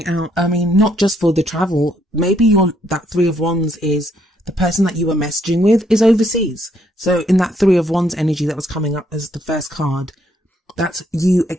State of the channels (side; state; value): both; normal; correlation 0.71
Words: out. I mean, not just for the travel. Maybe that Three of Wands is the person that you were messaging with is overseas. So in that Three of Wands energy that was coming up as the first card, that's you